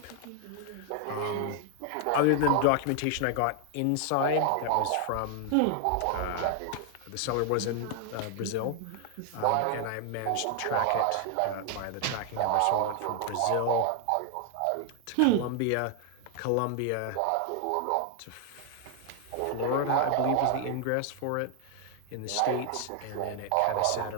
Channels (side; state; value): both; different; correlation 0.00